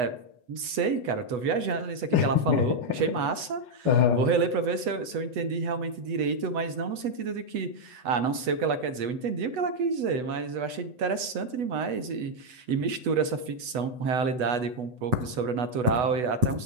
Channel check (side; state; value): left; late; 8.1 ms